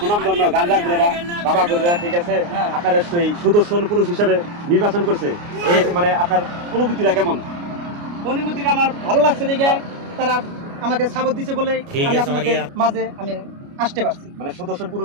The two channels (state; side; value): late; left; 29 ms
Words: গাঁজা ঘুরেরা বাবা ঘুরেরা ঠিক আছে আপনার সেই সুদর্শন পুরুষ হিসেবে নির্বাচন করছে। এই মানে আপনার অনুভূতিটা কেমন? অনুমতিটা আমার ভালো লাগছে দেখে তারা আমাকে সাপোর্ট দিছে বলে ঠিক আমি আছে, আপনাদের মারিয়া। মাঝে আমি আসতে পারছি। মানে সুদর্শন